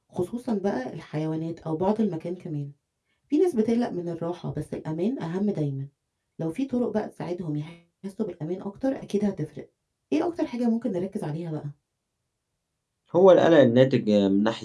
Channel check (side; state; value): both; identical; correlation 1.00